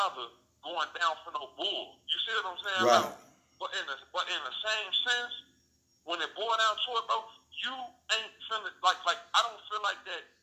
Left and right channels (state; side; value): identical; both; correlation 1.00